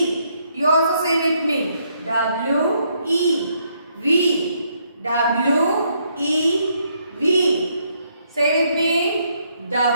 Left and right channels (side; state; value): both; inverted; correlation -0.73